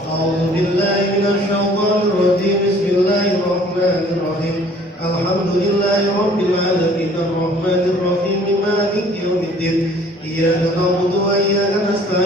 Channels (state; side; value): normal; both; correlation 0.54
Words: A'udzu billahi minasy syaithanir rajim. Bismillahirrahmanirrahim. Alhamdulillahi rabbil alamin arrahmanir rahim maliki yaumiddin. Iyyaka na'budu wa iyyaka